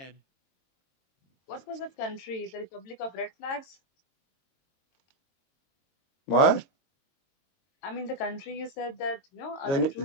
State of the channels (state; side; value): late; right; 22 ms